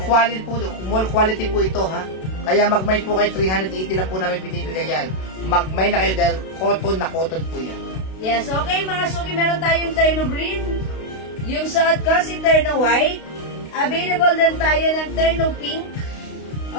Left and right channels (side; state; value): right; late; 32 ms